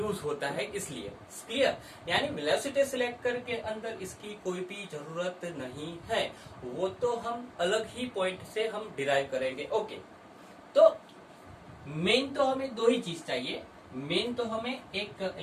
होता है, इसलिए क्लियर। यानी वेलोसिटी सिलेक्टर के अंदर इसकी कोई भी जरूरत नहीं है, वो तो हम अलग ही पॉइंट से हम डिराइव करेंगे। ओके, तो मेन तो हमें दो ही चीज चाहिए, मेन तो हमें एक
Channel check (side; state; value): both; identical; correlation 1.00